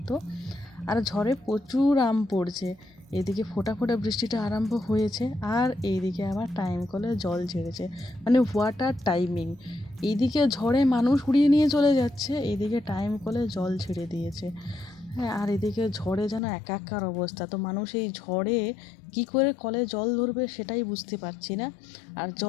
আর ঝড়ে প্রচুর আম পড়ছে। এদিকে ফোঁটা ফোঁটা বৃষ্টিটা আরম্ভ হয়েছে আর এইদিকে আবার টাইম কলে জল ঝেড়েছে, মানে ওয়াটার টাইমিং। এইদিকে ঝড়ে মানুষ উড়িয়ে নিয়ে চলে যাচ্ছে, এইদিকে টাইম কলে জল ছেড়ে দিয়েছে। হ্যাঁ, আর এদিকে ঝড়ে যেন একাকার অবস্থা। তো মানুষ এই ঝড়ে কি করে কলে জল ধরবে সেটাই বুঝতে পারছি না। আর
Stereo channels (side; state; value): right; drops out; at 16.4 s